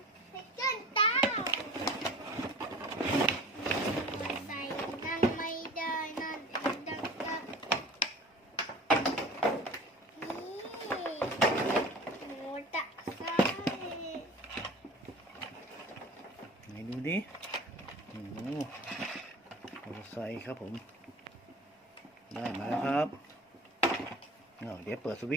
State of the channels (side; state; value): both; normal; correlation 0.40